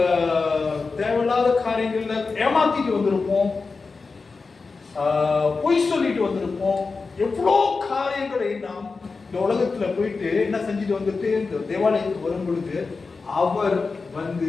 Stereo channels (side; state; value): right; quieter; 4.3 dB